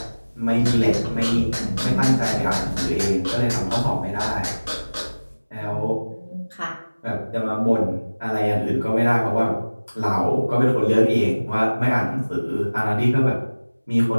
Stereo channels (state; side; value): inverted; both; correlation -1.00